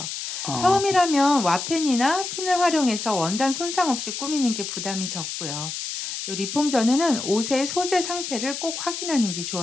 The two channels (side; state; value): left; noise; hiss, 6 dB below the sound